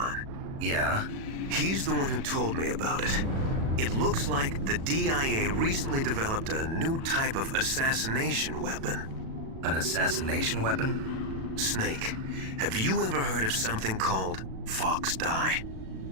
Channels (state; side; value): late; left; 37 ms